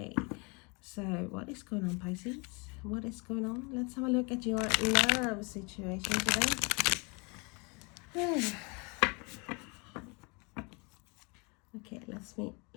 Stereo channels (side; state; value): right; quieter; 30.7 dB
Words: so what is going on, Pisces? What is going on? Let's have a look at your love situation today. Okay,